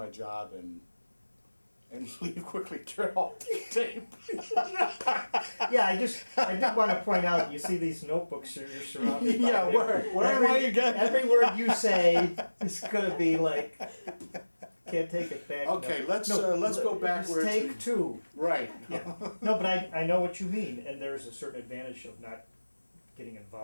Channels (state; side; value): inverted; both; correlation -1.00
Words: job and leave quickly, turn off the tape. Yeah, I did want to point out, you see these notebooks you're surrounded by. Yeah, where am I again? Every word you say is going to be like, can't take it back. Okay, no. let's go backwards. Take two. Right. Yeah. No, but I know what you mean, and there's a certain advantage of not getting